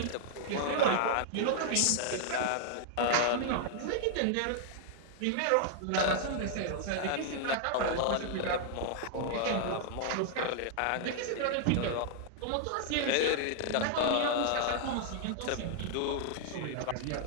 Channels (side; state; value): both; different; correlation -0.01